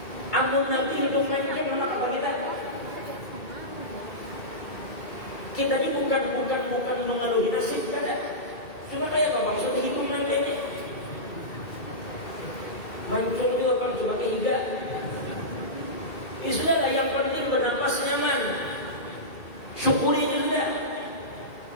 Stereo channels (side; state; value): right; late; 2.2 ms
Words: Amun Nabi hidung mancung anak apa kita? Kita ini bukan mengeluhi nasib kada. Cuma kayak apa maksudnya hidung mancungnya? Mancung itu akan coba kehiga. Ini sudah lah, yang penting bernapas nyaman. Syukuri ini sudah.